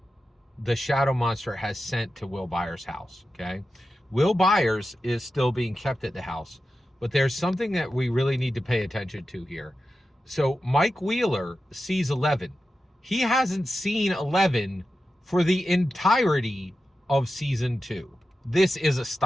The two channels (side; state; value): both; normal; correlation 0.92